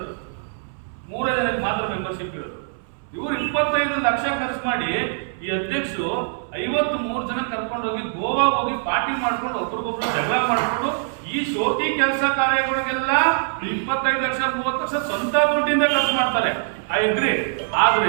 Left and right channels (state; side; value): silent; left; 63 dB below the other